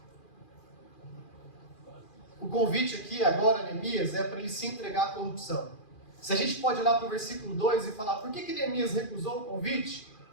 O convite aqui, agora, Neemias, é para ele se entregar à corrupção. Se a gente pode olhar para o versículo 2 e falar, por que Neemias recusou o convite?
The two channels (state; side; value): late; right; 2.4 ms